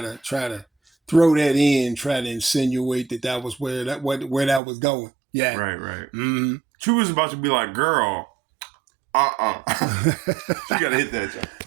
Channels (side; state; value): left; drops out; at 4.6 s